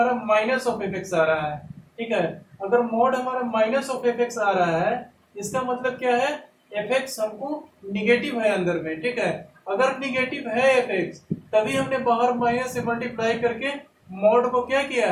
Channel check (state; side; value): identical; both; correlation 1.00